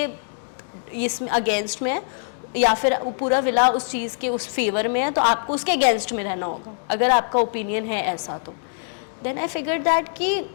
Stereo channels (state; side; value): silent; right; digital silence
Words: इसमें अगेंस्ट में है या फिर पूरा विला उस चीज़ के उस फेवर में है, तो आपको उसके अगेंस्ट में रहना होगा। अगर आपका ओपिनियन है ऐसा, तो देन आई फिगर दैट कि